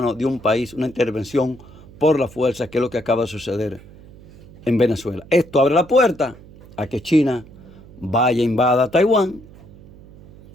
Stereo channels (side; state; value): right; noise; hum, 21 dB below the sound